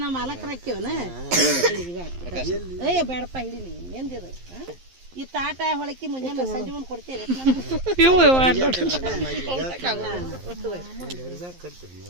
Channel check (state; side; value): late; left; 11 ms